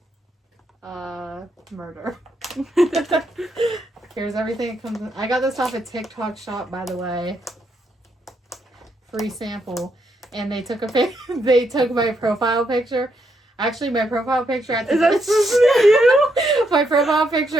murder. Here's everything that comes in. I got this off a TikTok shop, by the way. Free sample. And they took they took my profile picture. Actually, my profile picture at the time. Is that supposed to be you? My profile picture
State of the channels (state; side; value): normal; both; correlation 0.78